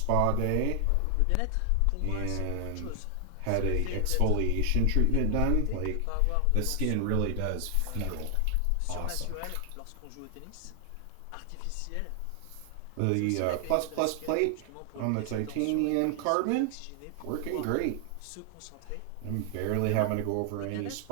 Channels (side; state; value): both; different; correlation 0.00